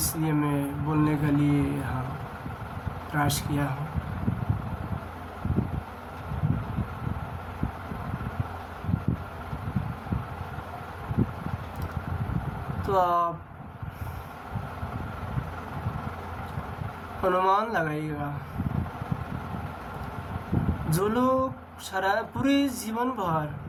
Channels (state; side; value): identical; both; correlation 1.00